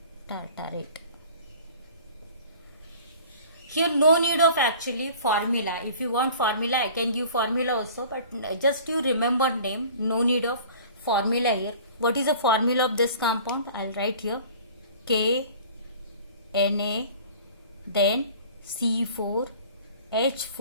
tartarate. Here no need of actually formula. If you want formula, I can give formula also, but just you remember name. No need of formula here. What is the formula of this compound? I'll write here K Na, then C4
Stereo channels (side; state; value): both; inverted; correlation -0.46